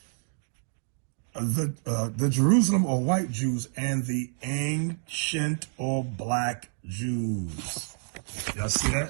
The Jerusalem or white Jews and the ancient or black Jews. Y'all see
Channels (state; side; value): silent; left; digital silence